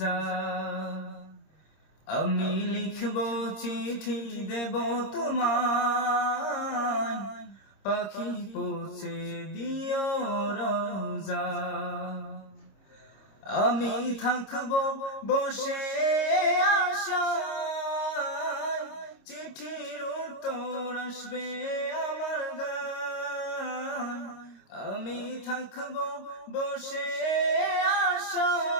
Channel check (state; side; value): late; right; 26 ms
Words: আমি লিখব চিঠি দেব তোমায়, পাখি পৌঁছে দিও রোজা। আমি থাকব বসে আশায়, চিঠির উত্তর আসবে আমার গায়। আমি থাকব বসে